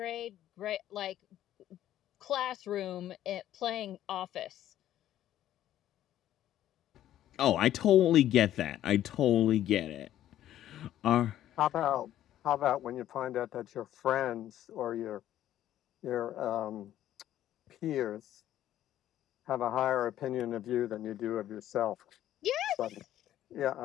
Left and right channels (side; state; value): right; quieter; 12.3 dB